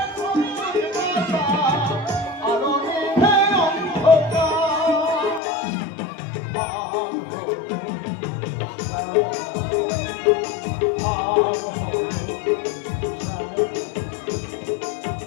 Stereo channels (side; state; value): right; drops out; at 5.4 s